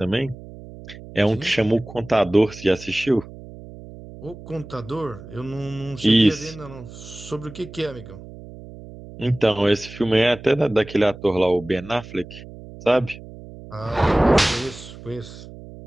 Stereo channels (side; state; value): right; noise; hum, 16 dB below the sound